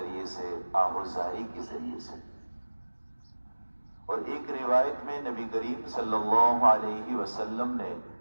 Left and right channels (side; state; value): both; inverted; correlation -1.00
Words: سے، آہوزاری کے ذریعے سے۔ اور ایک روایت میں نبی کریم صلی اللہ علیہ وسلم نے